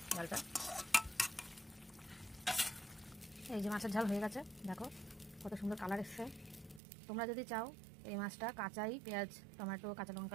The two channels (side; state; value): left; drops out; at 6.8 s